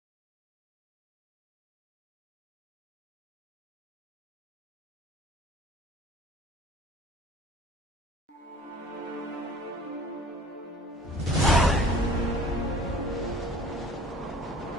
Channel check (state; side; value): normal; both; correlation 0.48